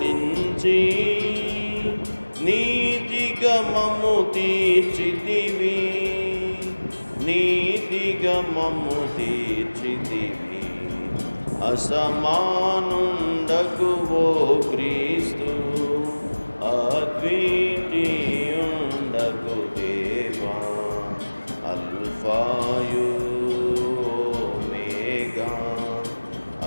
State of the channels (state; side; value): inverted; both; correlation -1.00